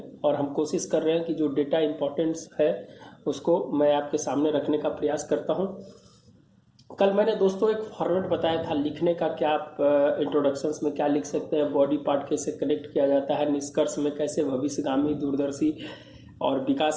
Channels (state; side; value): identical; both; correlation 1.00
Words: और हम कोशिश कर रहे हैं कि जो डेटा इंपॉर्टेंस है उसको मैं आपके सामने रखने का प्रयास करता हूं। कल मैंने दोस्तों एक फॉर्मेट बताया था लिखने का, क्या आप इंट्रोडक्शंस में क्या लिख सकते हैं, बॉडी पार्ट कैसे कनेक्ट किया जाता है, निष्कर्ष में कैसे भविष्यगामी दूरदर्शी और